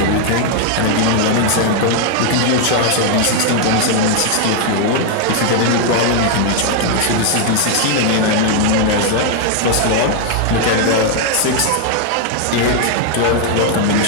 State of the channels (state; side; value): different; both; correlation 0.00